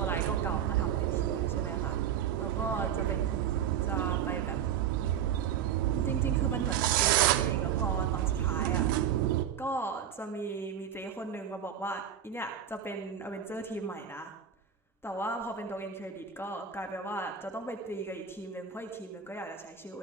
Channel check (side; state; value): left; quieter; 8.8 dB